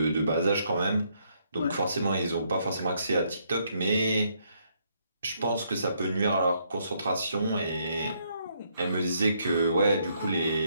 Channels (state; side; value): inverted; both; correlation -0.72